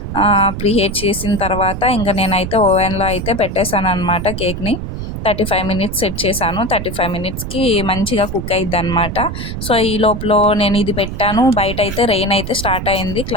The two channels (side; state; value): right; noise; rumble, 6 dB below the sound